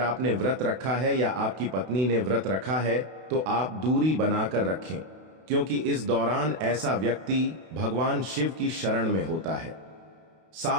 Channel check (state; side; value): late; left; 32 ms